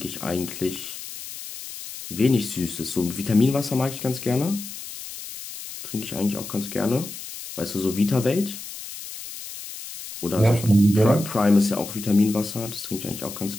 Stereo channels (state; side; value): noise; left; hiss, 11 dB below the sound